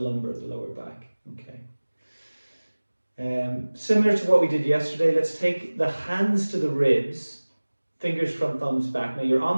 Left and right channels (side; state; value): both; inverted; correlation -1.00